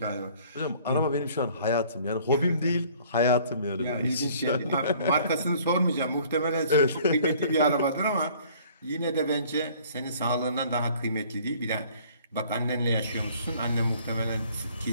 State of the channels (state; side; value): inverted; both; correlation -0.55